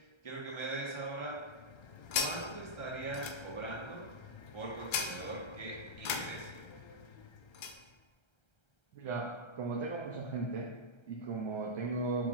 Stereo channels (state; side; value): late; right; 1.3 ms